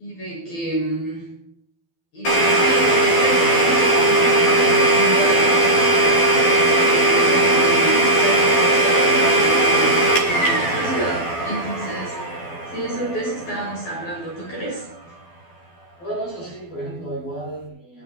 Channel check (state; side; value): late; right; 12 ms